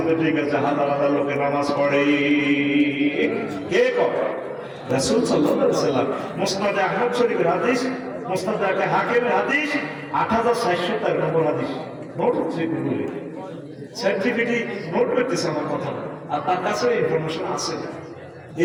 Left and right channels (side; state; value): both; identical; correlation 1.00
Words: ঠিক আছে হাজার হাজার লোকের নামাজ পড়ে কে করে রাসূল সাল্লাল্লাহু আলাইহি ওয়াসাল্লাম মুসনাদে আহমদ শরীফের হাদিস মুসনাদে হাকিমের হাদিস ৮৬০০ নম্বর হাদিস নোট হচ্ছে গুগলে সার্টিফিকেট নোট করতেছে আমার কথা আর তার কাছে ইনফরমেশন আছে